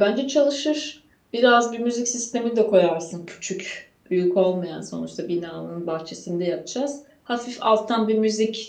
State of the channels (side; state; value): both; identical; correlation 1.00